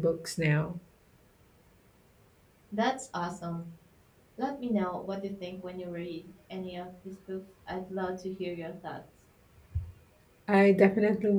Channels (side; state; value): both; identical; correlation 1.00